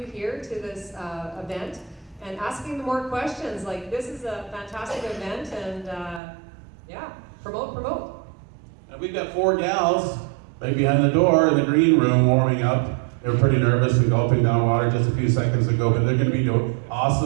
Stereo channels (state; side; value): drops out; left; at 6.2 s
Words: here to this event and asking them more questions like this is a fantastic event and yeah, promote. And we've got 4 gals right behind the door in the green room warming up. They were pretty nervous and gulping down water just a few seconds ago, but they're going to be